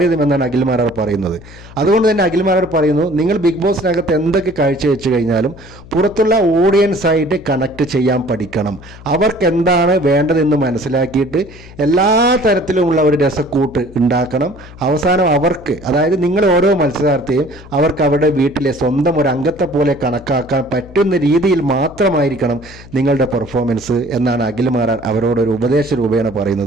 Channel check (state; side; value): noise; left; hum, 19 dB below the sound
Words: അഖിൽ മാരാർ പറയുന്നത്. അതുകൊണ്ട് തന്നെ അഖിൽ മാരാർ പറയുന്നു, നിങ്ങൾ ബിഗ് ബോസിനകത്ത് എന്തൊക്കെ കാഴ്ചവെച്ച് കഴിഞ്ഞാലും പുറത്തുള്ള ഓഡിയൻസ് ആയിട്ട് കണക്ട് ചെയ്യാൻ പഠിക്കണം. അവർക്ക് എന്താണ് വേണ്ടതെന്ന് മനസ്സിലാക്കിയിട്ട് എല്ലാ തരത്തിലുമുള്ള ഒരു രസക്കൂട്ട് ഉണ്ടാക്കണം. അവസാനം അവർക്ക്, അതായത് നിങ്ങൾ ഓരോ മത്സരാർത്ഥിയും അവർക്ക് അവരുടെ വീട്ടിലെ സ്വന്തം ഒരു അംഗത്തെ പോലെ കണക്കാക്കാൻ പറ്റുന്ന രീതിയിൽ മാത്രമായിരിക്കണം നിങ്ങളുടെ പെർഫോമൻസ് എന്നാണ് അഖിൽ മാരാർ അവരോടൊരു ഉപദേശ രൂപേണ